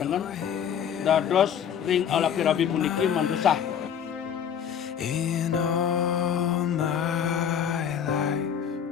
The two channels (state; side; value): quieter; right; 8.4 dB